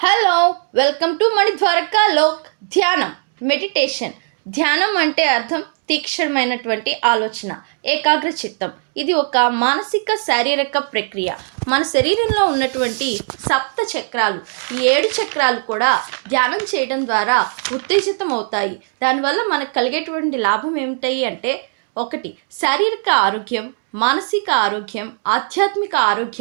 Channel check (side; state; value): left; silent; 60 dB below the other